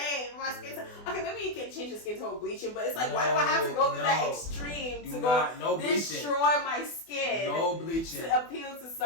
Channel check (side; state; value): right; late; 24 ms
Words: My skin tone. Okay, maybe you can change your skin tone bleaching, but it's like, why do I have to go through that extreme to destroy my skin? No bleaching. To appeal to